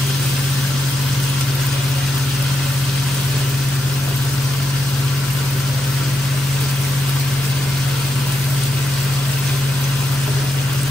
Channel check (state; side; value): normal; both; correlation 0.85